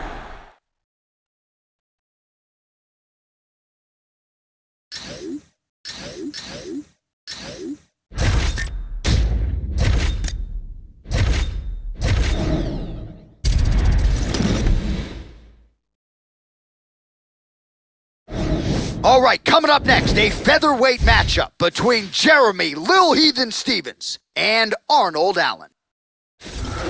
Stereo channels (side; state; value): both; identical; correlation 1.00